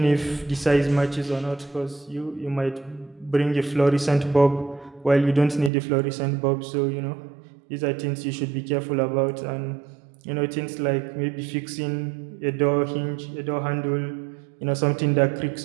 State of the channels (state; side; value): drops out; left; at 5.7 s